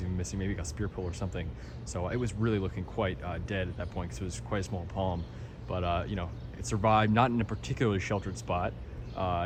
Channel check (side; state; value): both; identical; correlation 1.00